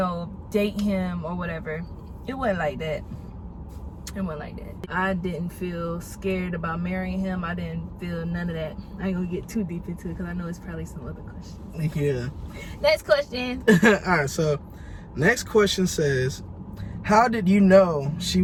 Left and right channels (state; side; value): identical; both; correlation 1.00